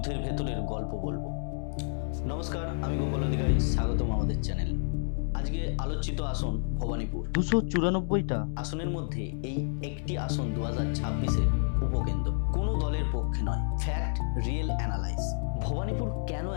ভেতরের গল্প বলবো। নমস্কার, আমি গোপাল অধিকারী, স্বাগতম আমাদের চ্যানেলে। আজকে আলোচিত আসন ভবানীপুর। 294টা আসনের মধ্যে এই একটি আসন 2026-এর উপকেন্দ্র। কোনো দলের পক্ষে নয়, ফ্যাক্ট, রিয়েল অ্যানালাইজ। ভবানীপুর কেন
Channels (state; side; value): silent; right; digital silence